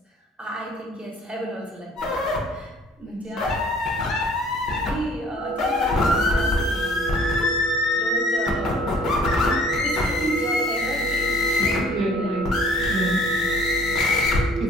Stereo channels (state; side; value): normal; both; correlation 0.54